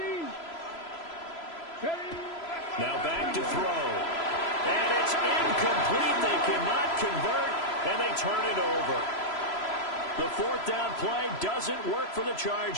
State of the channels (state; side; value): late; right; 3.0 ms